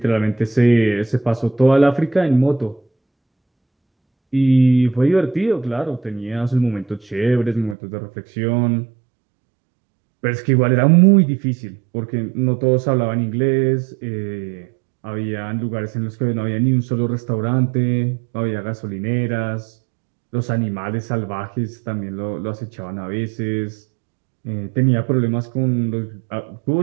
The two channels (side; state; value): left; drops out; at 7.8 s